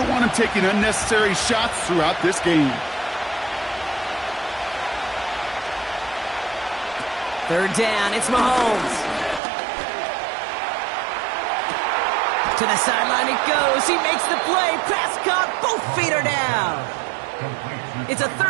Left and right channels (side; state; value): left; drops out; at 9.4 s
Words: want him taking unnecessary shots throughout this game. 3rd down, it's Mahomes. To the sideline it goes. He makes the play. Pass caught. Both feet are down. It's a